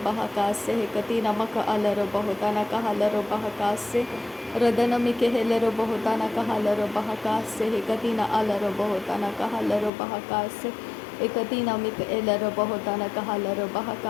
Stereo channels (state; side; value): drops out; right; at 9.9 s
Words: hekati namaka alaro bohotana kahalaro bahakase Radanamike helaro bohotana kahalaro bahakase hekati na alaro bohotana kahalaro bahakase Ekatina mika elaro bahotana kahalaro